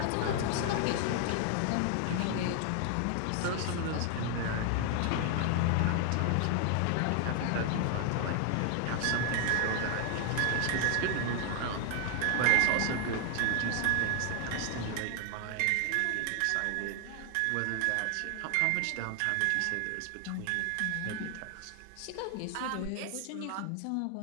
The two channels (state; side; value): different; both; correlation 0.00